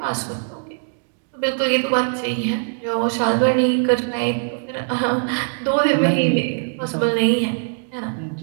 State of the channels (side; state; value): left; silent; digital silence